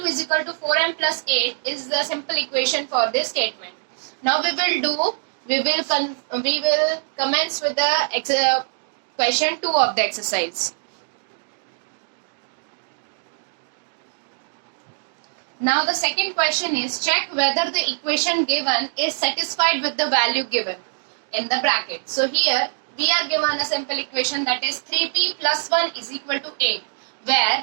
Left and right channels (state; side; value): silent; left; digital silence